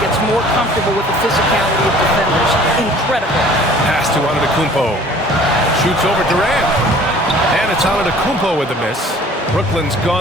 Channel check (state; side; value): normal; both; correlation 0.50